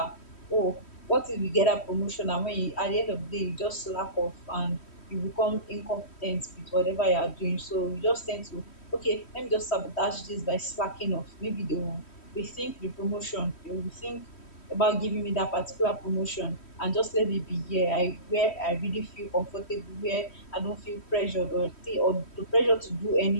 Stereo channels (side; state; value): right; late; 3.1 ms